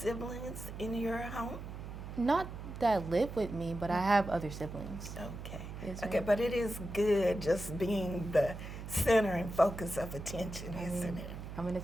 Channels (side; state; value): right; noise; hum, 9 dB below the sound